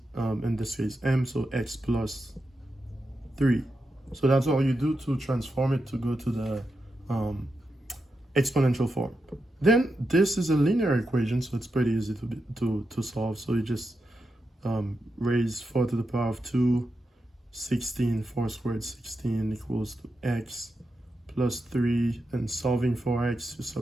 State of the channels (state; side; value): normal; both; correlation 0.87